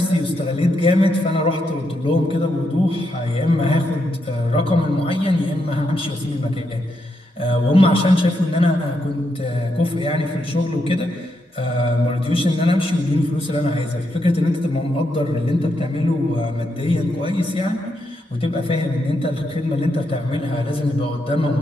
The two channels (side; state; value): both; normal; correlation 0.81